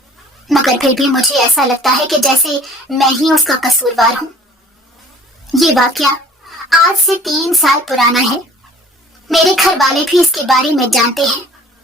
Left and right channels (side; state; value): both; normal; correlation 0.51